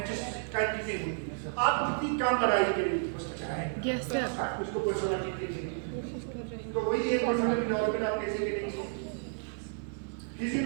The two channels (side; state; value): left; silent; 55 dB below the other